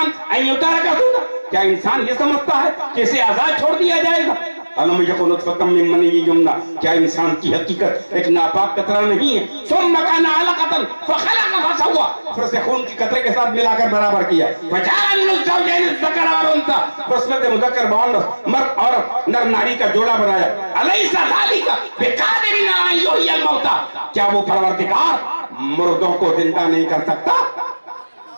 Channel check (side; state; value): both; inverted; correlation -1.00